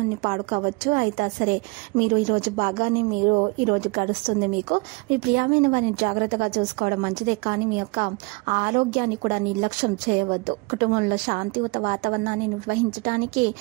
పాడుకోవచ్చు. అయితే సరే, మీరు ఈరోజు బాగానే ఈ రోజు గడుస్తుంది. మీకు మీ ప్రియమైన వారిని జాగ్రత్తగా చూసుకోవడం మంచిదే, కానీ మీ యొక్క ఆరోగ్యాన్ని కూడా నిర్లక్ష్యం చేయవద్దు. కుటుంబంలో శాంతియుత వాతావరణాన్ని నిర్వహించడానికి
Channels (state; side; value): quieter; left; 28.3 dB